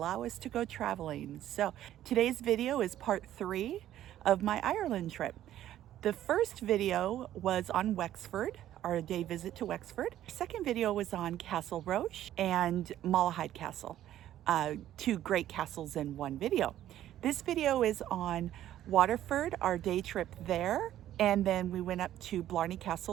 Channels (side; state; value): left; quieter; 12.4 dB